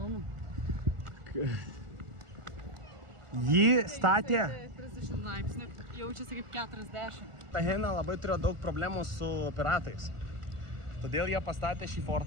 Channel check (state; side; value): late; left; 1.4 ms